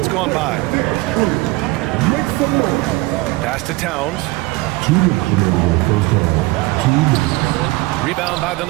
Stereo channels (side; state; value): left; quieter; 21.4 dB